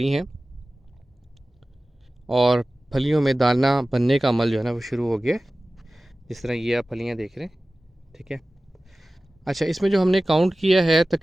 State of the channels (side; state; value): both; normal; correlation 0.97